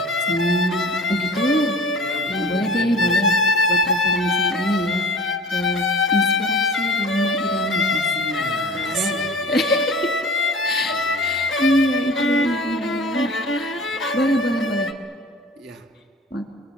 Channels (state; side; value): normal; both; correlation 0.42